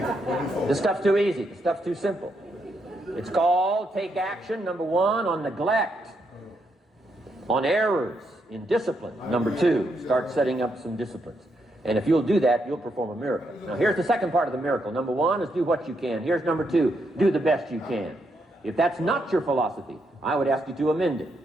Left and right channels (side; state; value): both; normal; correlation 0.79